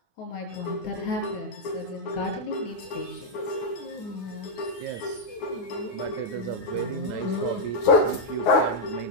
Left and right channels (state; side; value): late; right; 9.7 ms